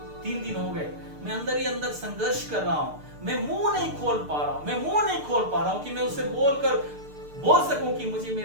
3 दिन हो गए, मैं अंदर ही अंदर संघर्ष कर रहा हूं। मैं मुंह नहीं खोल पा रहा हूं कि मैं उसे बोल सकूं कि मुझे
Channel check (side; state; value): left; late; 6.7 ms